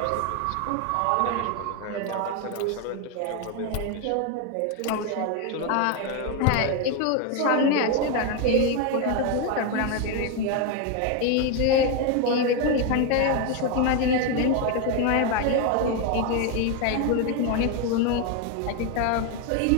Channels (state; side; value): different; both; correlation 0.02